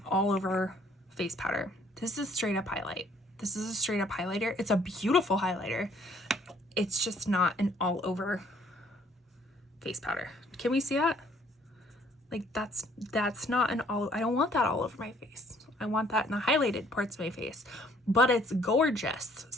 all over face powder. This is straight up highlight. This is a straight up highlighter. It's a beautiful highlighter. It's just not an all over face powder. Can we see that? Like that's not an all, I don't want that all over my face. I want that in the highlighted parts of my face, but it's gorgeous.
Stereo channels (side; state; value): both; normal; correlation 0.61